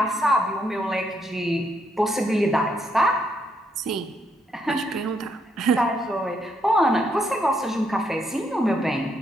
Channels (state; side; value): normal; both; correlation 0.75